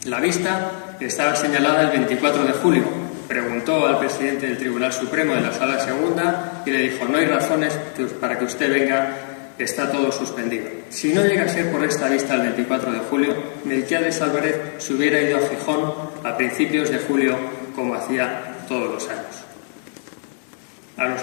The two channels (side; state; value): right; silent; digital silence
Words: La vista estaba señalada el 24 de julio. Preguntó al presidente del Tribunal Supremo en la Sala Segunda y le dijo: «No hay razones para que usted venga, está todo suspendido». Si no llega a ser por esta vista el 24 de julio, Melquiades Álvarez se hubiera ido a Gijón a principios de julio, como hacía todos los años. A los